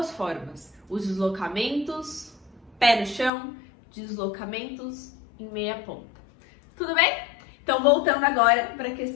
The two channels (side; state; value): right; drops out; at 3.3 s